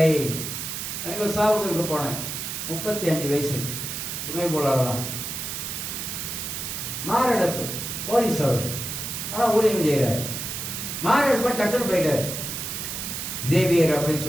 எனக்கு ஒரு சாவுக்கு போனேன், 35 வயசு, சுமை போலாதான், மாரடைப்பு, போலீஸ் அவர், ஆனா ஊழியம் செய்யறாரு. மாரடைப்பு டக்குன்னு போயிட்டாரு. ஜேவியர் அப்படின்னு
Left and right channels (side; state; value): right; noise; hiss, 5 dB below the sound